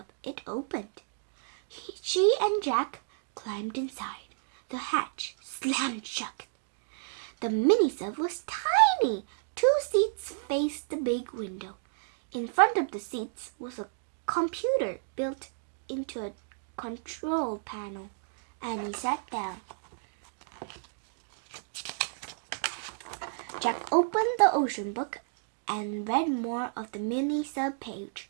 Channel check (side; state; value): left; silent; digital silence